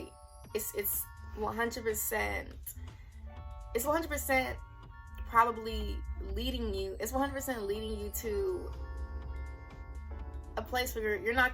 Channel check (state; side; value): identical; both; correlation 1.00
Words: It's 100%, it's 100% probably leading you, it's 100% leading you to a place where you're not